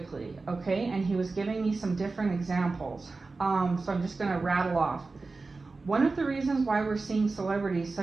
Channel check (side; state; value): left; quieter; 3.8 dB